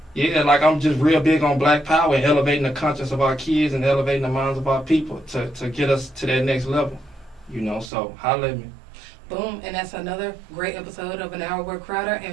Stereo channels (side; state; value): left; drops out; at 7.9 s